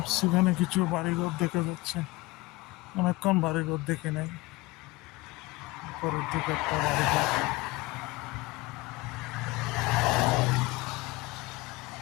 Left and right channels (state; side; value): quieter; right; 21.3 dB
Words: এখানে কিছু বাড়িঘর দেখা যাচ্ছে, অনেকক্ষণ বাড়িঘর দেখে নেই। পরের দিকে একটা বাড়িঘর।